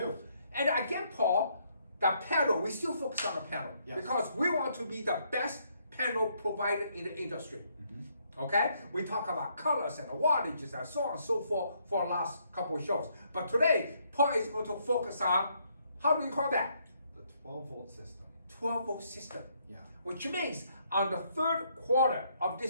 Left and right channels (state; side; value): inverted; both; correlation -0.71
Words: And again, Paul, the panel, we still focus on the panel Yes. because we want to be the best panel provider in the industry. Okay? We talk about colors and wattages and so on and so forth for the last couple of shows. But today, Paul is going to focus on, how do you call that? The 12-volt system. 12-volt system. Yeah. Which means on the third quarter of